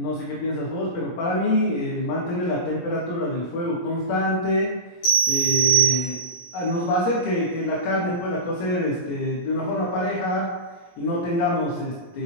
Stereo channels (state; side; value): late; right; 17 ms